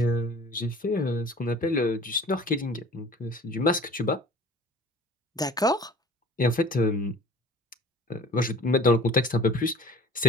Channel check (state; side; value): normal; both; correlation 0.47